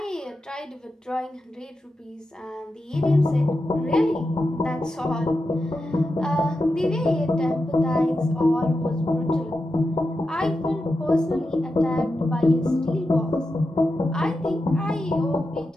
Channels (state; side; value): normal; both; correlation 0.89